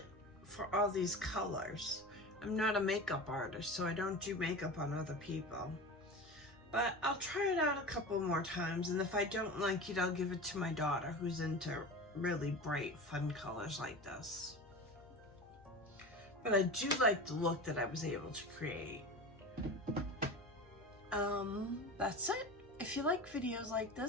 for all these colors. I'm not a makeup artist, so I don't do makeup on other people. But I'll try it out a couple more times, and if I don't like it, I'll give it to my daughter who's into really bright, fun colors like this. But I do like the look that I was able to create. That's it. If you like videos like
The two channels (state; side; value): normal; both; correlation 0.30